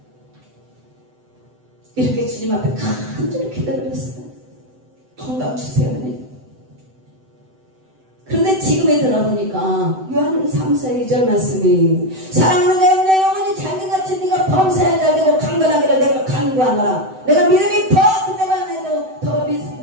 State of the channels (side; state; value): left; late; 7.9 ms